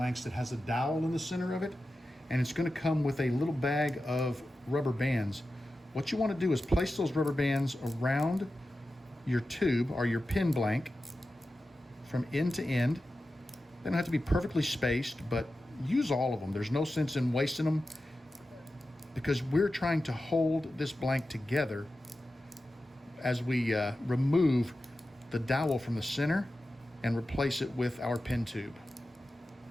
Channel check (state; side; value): normal; both; correlation 0.93